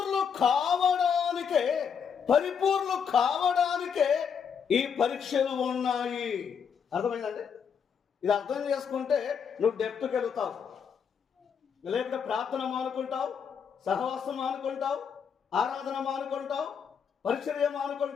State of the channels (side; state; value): right; quieter; 7.0 dB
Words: కావడానికే, పరిపూర్ణ కావడానికే ఈ పరీక్షలు ఉన్నాయి. అర్థమైందండి? ఇది అర్థం చేసుకుంటే నువ్వు డెప్త్కి వెళుతావు. లేకపోతే ప్రార్థన మానుకుంటావు, సహవాసం మానుకుంటావు, ఆరాధన మానుకుంటావు, పరిచర్య